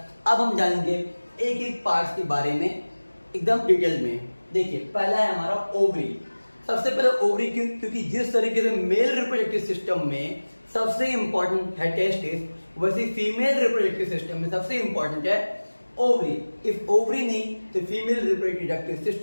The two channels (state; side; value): inverted; both; correlation -1.00